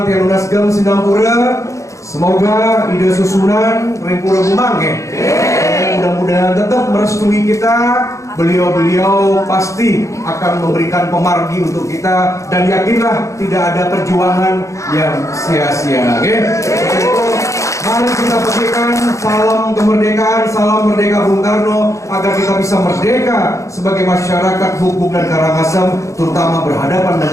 tiang lunas gem Singapura. Semoga ide susunan Rempura Gumang ya. Mudah-mudahan tetap merestui kita. Beliau-beliau pasti akan memberikan pemargi untuk kita dan yakinlah tidak ada perjuangan yang sia-sia. Oke? Mari kita petikkan salam kemerdekaan, salam merdeka Bung Karno agar kita bisa merdeka sebagai masyarakat Bubuk dan Karangasem, terutama berhadapan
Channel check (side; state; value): right; late; 0.15 ms